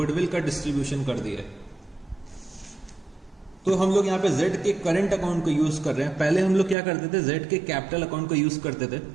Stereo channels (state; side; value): drops out; left; at 6.8 s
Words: का डिस्ट्रीब्यूशन कर दिया है। तो हम लोग यहाँ पे z के करंट अकाउंट को यूज कर रहे हैं। पहले हम लोग क्या करते थे, z के कैपिटल अकाउंट को यूज करते थे,